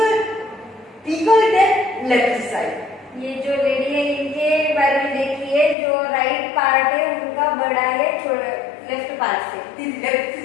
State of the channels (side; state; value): right; drops out; at 5.8 s